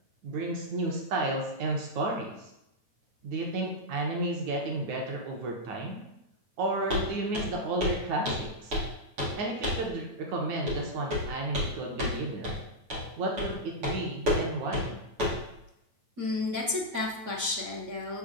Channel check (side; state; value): left; late; 8.7 ms